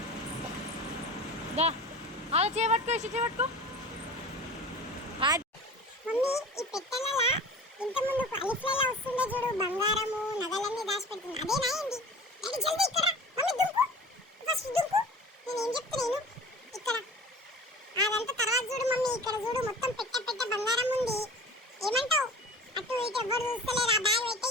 అలా చేపట్టుకో, చేపట్టుకో. మమ్మీ ఈ పెట్టెలలో ఇంత ముందు అలిఫ్లలో వస్తుందో చూడు, బంగారము నగలన్నీ దాచిపెడుతుంది, అదేనా ఏంది? డాడీ జల్దీ ఇక్కడ మమ్మీ దుంకు. ఫస్ట్ ఇక్కడ చూడు మొత్తం పెట్ట పెట్ట బంగారం ఉంది. ఏమంటావు? అటు ఇటు ఎవరు చూస్తలేరు. ఆ బ్యాగ్ అయితే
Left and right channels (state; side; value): normal; both; correlation 0.39